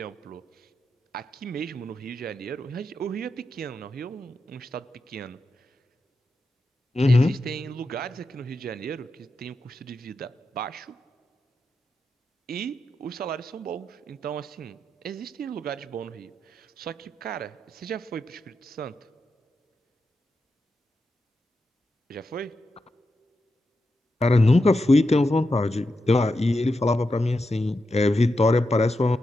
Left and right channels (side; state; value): both; normal; correlation 0.87